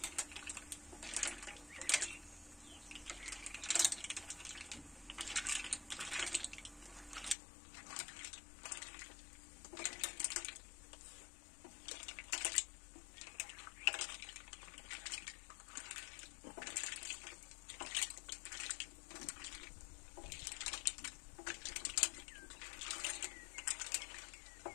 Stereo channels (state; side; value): drops out; right; at 7.4 s